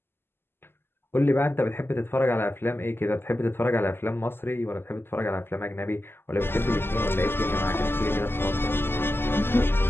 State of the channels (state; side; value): late; right; 0.11 ms